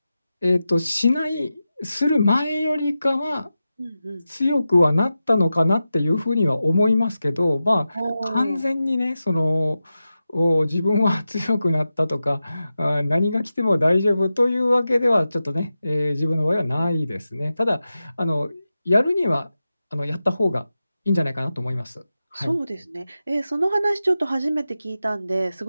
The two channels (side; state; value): both; inverted; correlation -0.92